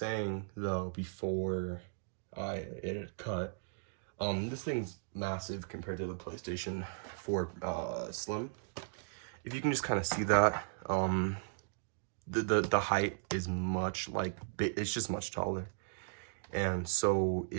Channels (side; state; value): left; silent; digital silence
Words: though before it had cut, this thing's massive compared to the PlayStation 4 Slim. If you can just kind of see that, the height is much like it's just much taller, and so